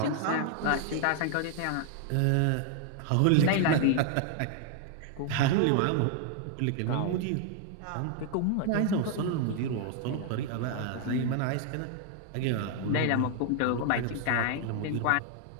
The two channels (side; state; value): both; different; correlation 0.00